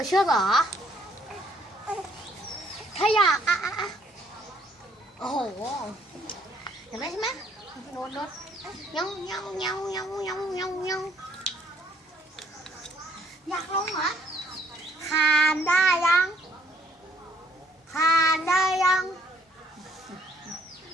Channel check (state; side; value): normal; both; correlation 0.65